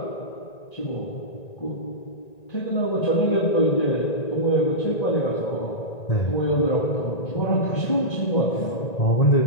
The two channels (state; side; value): late; right; 1.9 ms